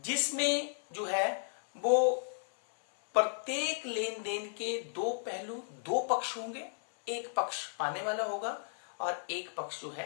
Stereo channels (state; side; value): silent; right; 55 dB below the other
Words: जो है वो प्रत्येक लेन then के दो पहलू, दो पक्ष होंगे, एक पक्ष पाने वाला होगा और एक पक्ष जो